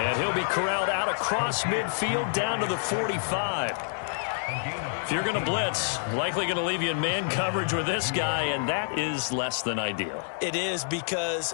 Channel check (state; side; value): silent; right; 60 dB below the other